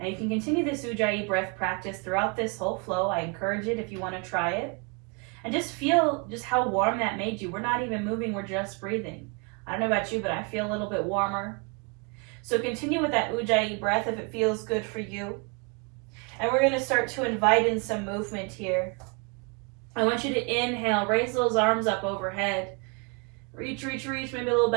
you can continue this ujjayi breath practice throughout this whole flow. I encourage it if you want to try it. And just feel just how warm that made you. We're not even moving, we're just breathing. I don't know about you, but I feel a little bit warmer. So continue with that ujjayi breath if it feels good for you. And we're going to start to invite in some movement here. I want you to inhale, raise those arms up overhead. Reach, reach, reach, maybe a little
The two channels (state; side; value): quieter; left; 33.1 dB